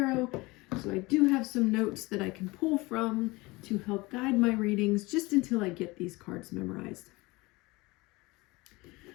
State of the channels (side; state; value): right; quieter; 22.9 dB